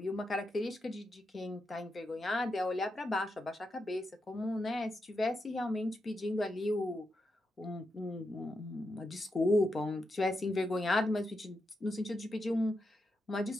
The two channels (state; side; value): normal; both; correlation 0.85